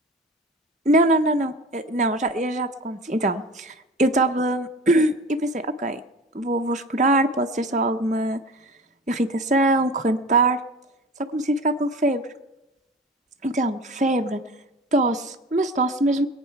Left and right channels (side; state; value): both; normal; correlation 0.37